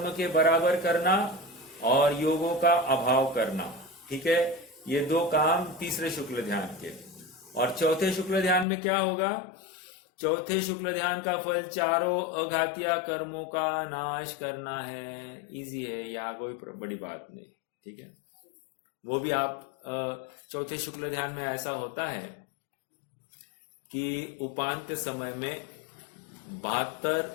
के बराबर करना और योगों का अभाव करना। ठीक है, ये 2 काम तीसरे शुक्ल ध्यान के। और चौथे शुक्ल ध्यान में क्या होगा? चौथे शुक्ल ध्यान का फल चारों अघातीय कर्मों का नाश करना है। इजी है, यहाँ कोई बड़ी बात नहीं। ठीक है, वो भी आप चौथे शुक्ल ध्यान में ऐसा होता है कि उपांत्य समय में 72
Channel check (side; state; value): right; drops out; at 8.7 s